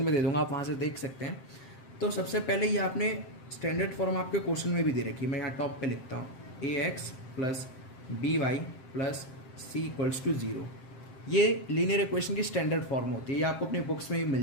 दे दूंगा, आप वहाँ से देख सकते हैं। तो सबसे पहले ये आपने स्टैंडर्ड फॉर्म आपके क्वेश्चन में भी दे रखी है। मैं यहाँ टॉप पे लिखता हूँ ax plus B Y plus C equals to 0। ये लीनियर इक्वेशन की स्टैंडर्ड फॉर्म होती है, ये आपको अपनी बुक्स में भी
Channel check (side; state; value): right; late; 7.6 ms